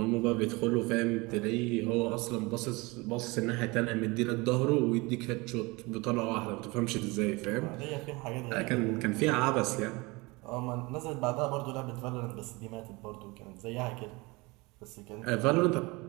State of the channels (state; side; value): quieter; left; 24.9 dB